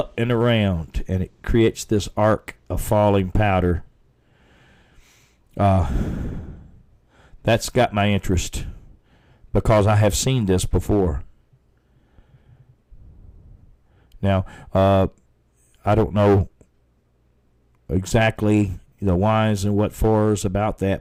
and around, and it creates this arc of falling powder. That's got my interest because I have seen this before. Now, I don't know exactly the whys and what fors about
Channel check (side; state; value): both; identical; correlation 1.00